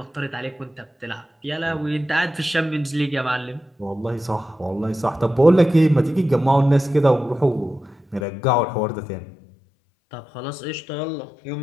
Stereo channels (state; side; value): drops out; right; at 8.2 s